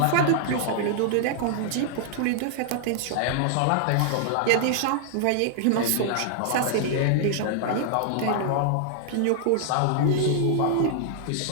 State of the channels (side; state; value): both; different; correlation -0.01